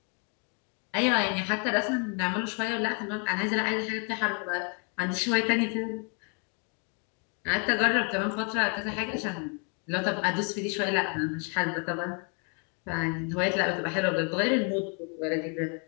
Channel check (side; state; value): right; quieter; 38.6 dB